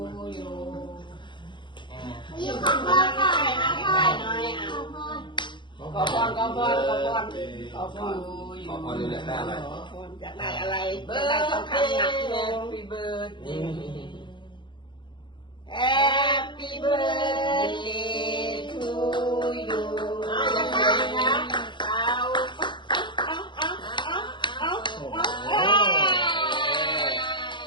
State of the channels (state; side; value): late; right; 0.23 ms